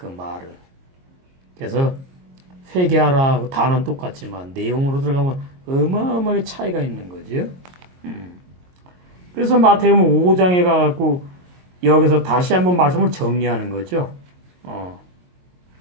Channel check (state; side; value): late; left; 22 ms